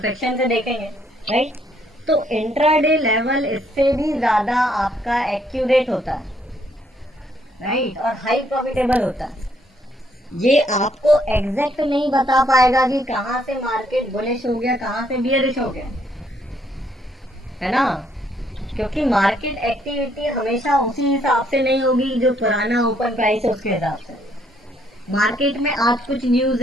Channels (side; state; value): both; normal; correlation 0.69